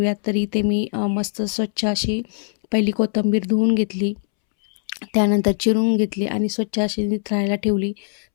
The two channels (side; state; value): right; silent; 65 dB below the other